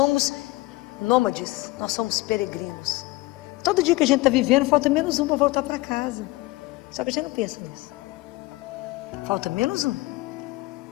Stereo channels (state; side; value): quieter; right; 20.6 dB